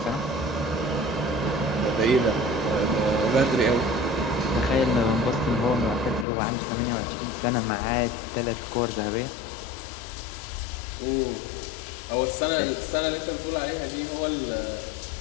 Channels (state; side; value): drops out; right; at 6.2 s